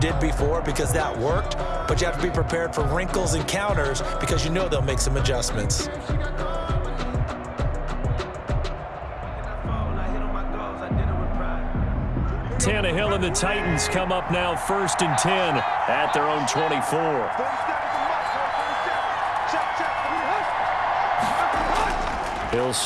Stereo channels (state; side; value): identical; both; correlation 1.00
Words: before because that worked, but you have to be prepared for wrinkles and counters because you know they'll make some adjustments. Tannehill and the Titans come up now 1st and 10 at their own 24. He'll